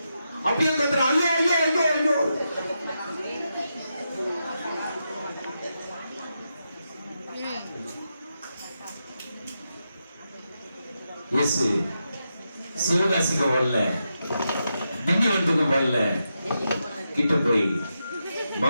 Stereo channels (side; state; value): both; inverted; correlation -0.86